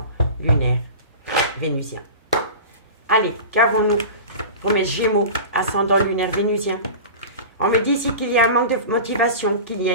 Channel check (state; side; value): inverted; both; correlation -0.33